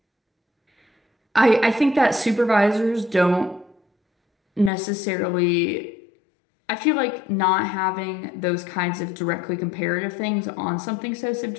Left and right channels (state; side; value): drops out; right; at 4.7 s